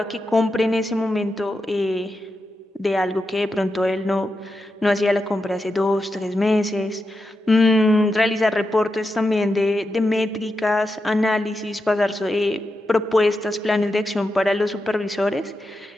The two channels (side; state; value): both; normal; correlation 0.88